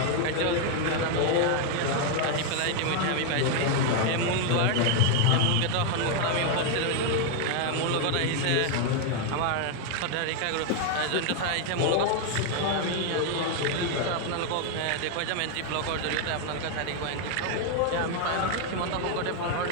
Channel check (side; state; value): both; different; correlation 0.00